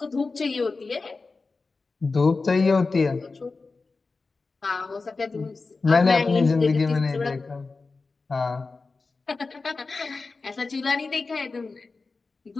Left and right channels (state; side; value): quieter; right; 4.0 dB